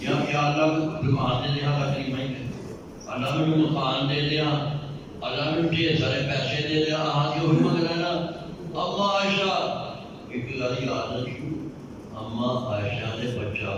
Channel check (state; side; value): identical; both; correlation 1.00